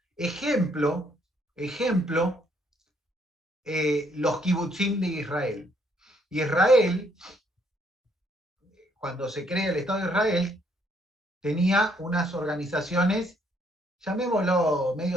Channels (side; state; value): both; normal; correlation 0.69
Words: Ejemplo, los kibutzim de Israel. Israel, cuando se crea el Estado de Israel, tenía unas organizaciones, llamémoslo